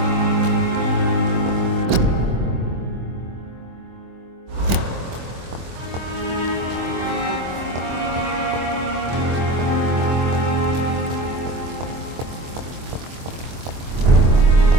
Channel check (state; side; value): late; left; 24 ms